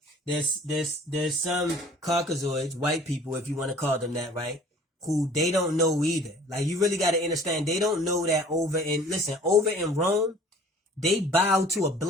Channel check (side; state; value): both; normal; correlation 0.50